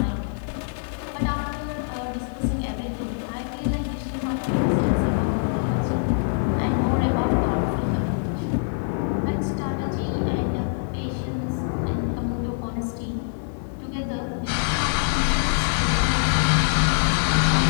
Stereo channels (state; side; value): silent; right; digital silence